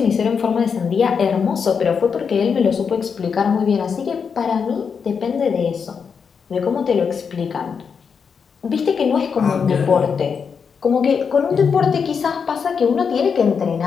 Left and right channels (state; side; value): quieter; right; 6.2 dB